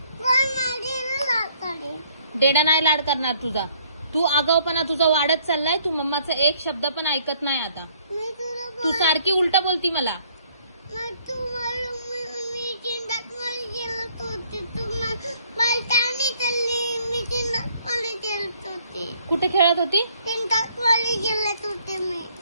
पण माझी लाड करेल. डेडा नाही लाड करणार तुझा. तू आगाऊपणा तुझा वाढत चाललाय. तू मम्माचा एक शब्द पण ऐकत नाही आता. मी तुला तू सारखी उलट बोलती मला. मी चिंतात मध्ये गेलत होती. तू पलटाने चालली. मी चिंतात मध्ये गेलत होती. कुठे खेळत होती? चिंतात मध्ये गेलत होते मी.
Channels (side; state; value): both; inverted; correlation -0.63